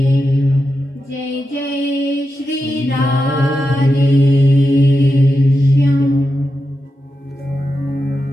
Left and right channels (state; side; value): normal; both; correlation 0.89